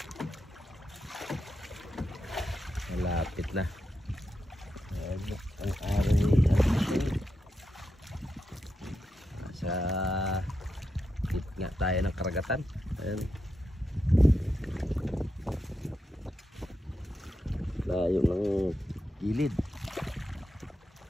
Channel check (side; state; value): both; normal; correlation 0.86